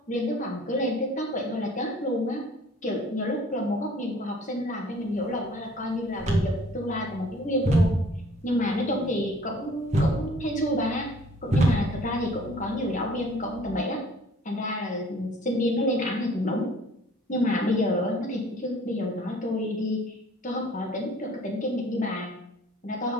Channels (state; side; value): normal; both; correlation 0.53